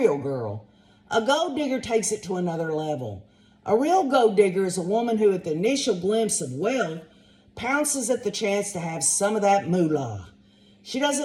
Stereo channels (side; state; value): both; identical; correlation 1.00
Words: girl. A gold digger takes it to another level. A real gold digger is a woman who, at the initial glimpse of wealth, pounces at the chance to have some of that moolah. She